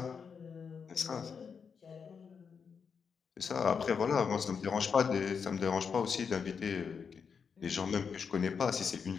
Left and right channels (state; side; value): quieter; right; 6.2 dB